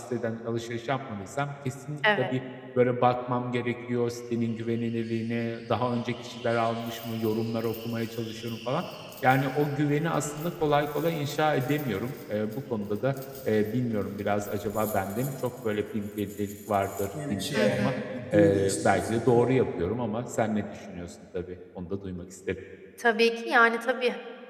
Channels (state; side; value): identical; both; correlation 1.00